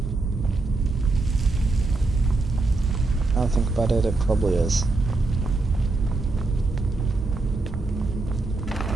Now I think about it, it probably is.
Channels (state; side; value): quieter; left; 3.4 dB